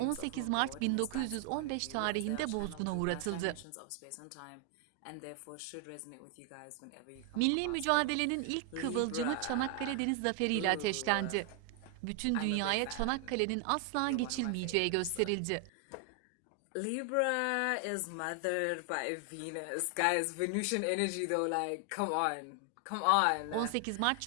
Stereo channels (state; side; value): different; both; correlation 0.00